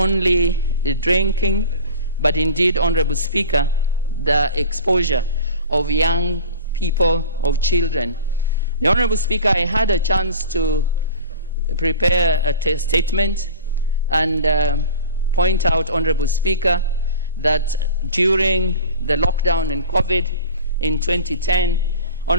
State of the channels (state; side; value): inverted; both; correlation -0.38